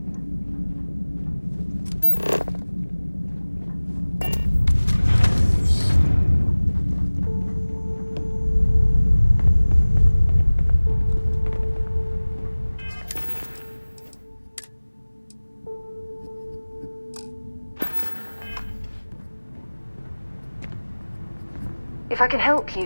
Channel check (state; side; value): inverted; both; correlation -1.00